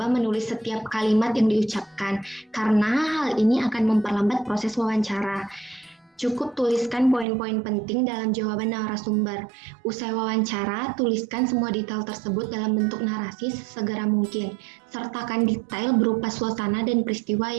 menulis setiap kalimat yang diucapkan karena hal ini akan memperlambat proses wawancara. Cukup tuliskan poin-poin penting dalam jawaban narasumber. Usai wawancara, tuliskan semua detail tersebut dalam bentuk narasi sesegera mungkin. Sertakan detail berupa suasana dan peristiwa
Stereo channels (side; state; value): left; drops out; at 7.2 s